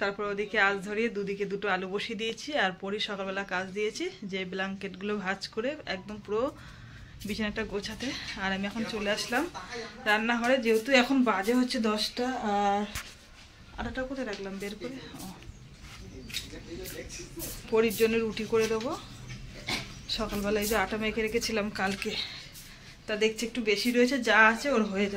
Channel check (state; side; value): identical; both; correlation 1.00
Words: ওদিকে আঁচ ধরিয়ে দুদিকে দুটো আলু বসিয়ে দিয়েছি। আর পরই সকালবেলা কাজ দিয়েছি যে ব্ল্যাঙ্কেটগুলো ভাঁজ করে একদম পুরো বিছানাটা গোছাতে। আর আমি এখন চলে আসলাম রান্নাঘরে, যেহেতু এখন বাজে হচ্ছে 10টা। আর আটাটা কোথায় রাখলাম বের করে, পরির জন্য রুটি করে দেবো। সকালবেলায় যে আটা মেখে রেখেছিলাম কালকে, তা দেখছি একটু বেশি রয়েছে, যা আছে ওর হয়ে